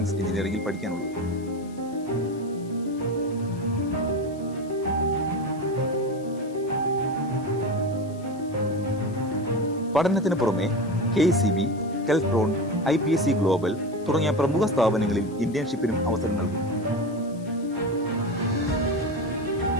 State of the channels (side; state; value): left; noise; hiss, 25 dB below the sound